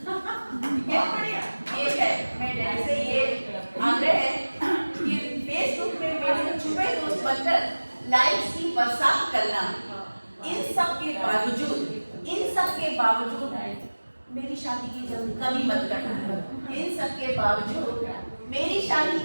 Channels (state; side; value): inverted; both; correlation -1.00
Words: ये बढ़िया, ये है मैं डैडी से ये आग्रह है कि फेसबुक में मेरे छुपे दोस्त बनकर लाइक्स की बरसात करना। इन सब के बावजूद मेरी शादी की जल्दी कभी मत करना। इन सब के बावजूद मेरी शादी